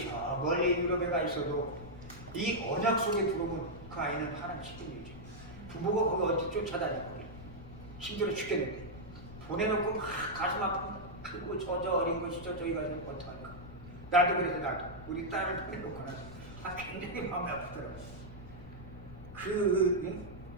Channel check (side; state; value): left; noise; rumble, 15 dB below the sound